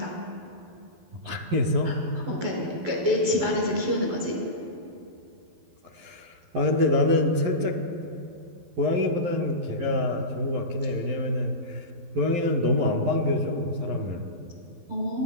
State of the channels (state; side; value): late; left; 12 ms